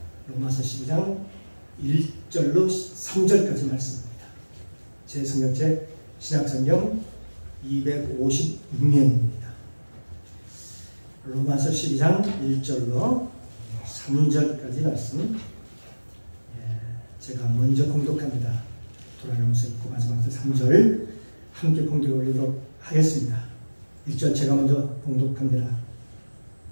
1절로 3절까지 말씀입니다. 제 성경책 신약성경 256면입니다. 로마서 12장 1절로 3절까지 말씀 제가 먼저 봉독합니다. 돌아가면서 읽고 마지막으로 3절 함께 봉독해 올리도록 하겠습니다. 1절 제가 먼저 봉독합니다.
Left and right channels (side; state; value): both; inverted; correlation -1.00